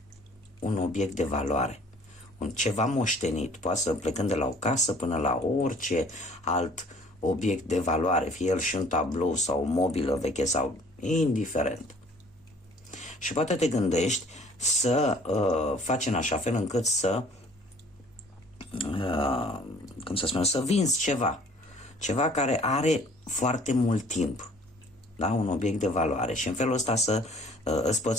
un obiect de valoare, un ceva moștenit, poate să plecând de la o casă până la orice alt obiect de valoare, fie el și un tablou sau o mobilă veche sau indiferent. Și poate te gândești să faci în așa fel încât să să vinzi ceva care are foarte mult timp, da? Un obiect de valoare și în felul ăsta să îți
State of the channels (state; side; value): normal; both; correlation 0.54